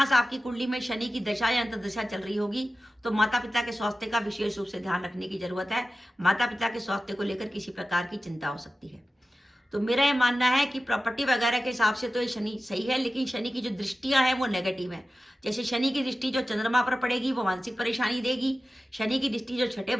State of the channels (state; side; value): normal; both; correlation 0.94